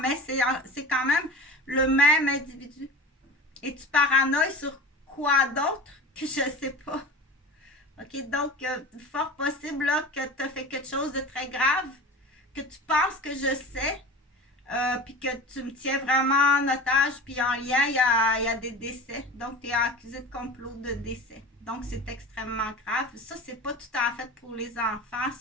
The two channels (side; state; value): both; normal; correlation 0.33